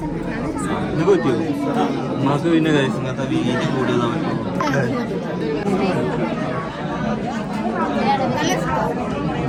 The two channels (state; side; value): identical; both; correlation 1.00